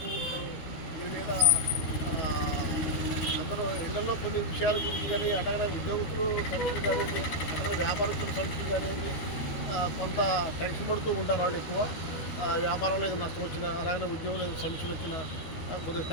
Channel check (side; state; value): right; late; 13 ms